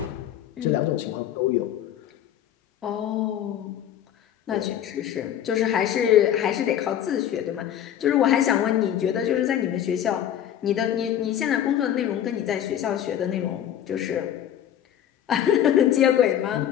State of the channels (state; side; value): quieter; right; 10.6 dB